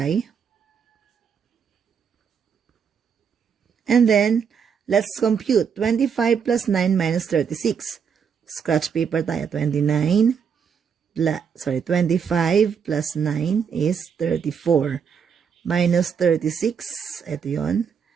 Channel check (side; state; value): left; quieter; 6.9 dB